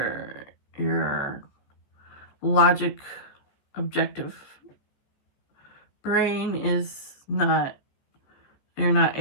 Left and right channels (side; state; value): right; late; 15 ms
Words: logic objective brain is not, you're not